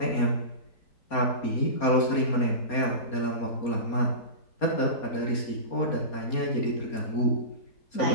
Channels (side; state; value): right; late; 4.3 ms